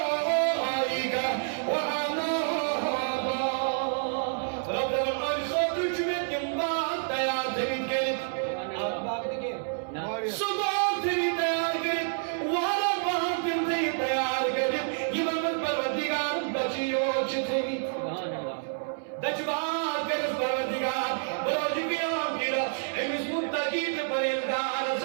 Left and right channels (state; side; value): silent; left; 59 dB below the other